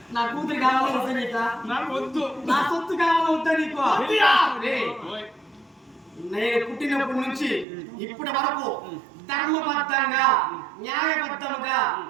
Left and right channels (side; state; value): left; drops out; at 7.7 s